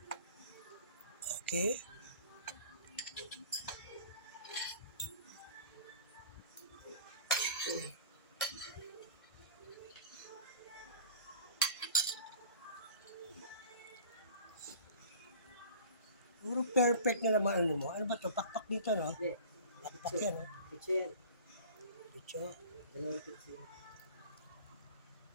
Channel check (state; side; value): inverted; both; correlation -0.42